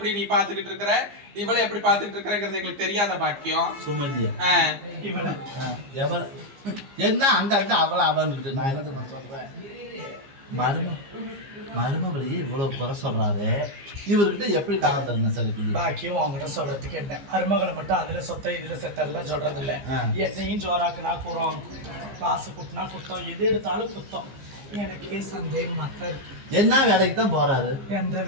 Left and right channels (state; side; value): late; left; 15 ms